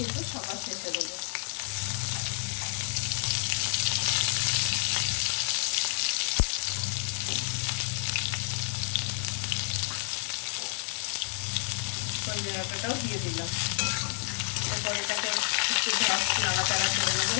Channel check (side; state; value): right; silent; 58 dB below the other